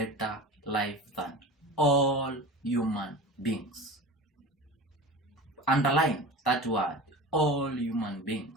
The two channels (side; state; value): both; normal; correlation 0.33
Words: life than all human beings. Underline that word, all human